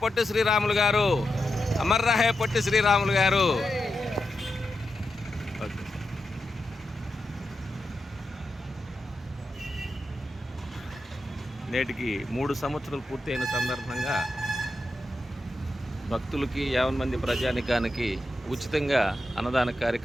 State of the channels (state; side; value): normal; both; correlation 0.88